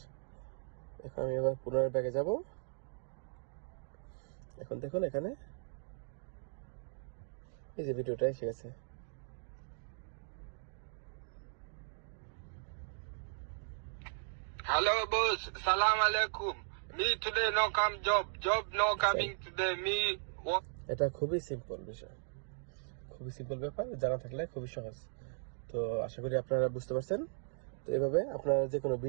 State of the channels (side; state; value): left; silent; digital silence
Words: এখন আমি আবার পুনরায় ব্যাগে যাব। এখন দেখুন এখানে এই যে ভিডিওটা এসে গেছে। Hello boss, salam alaikum. Me today no come job no coming today me এটা খুবই সিম্পল বিষয়, খুবই সিম্পল ব্যাপার, জানা থাকলে খুবই সহজ। তো আশা করি আপনারা বুঝতে পারছেন। তো এভাবে আপনারা যে কোনো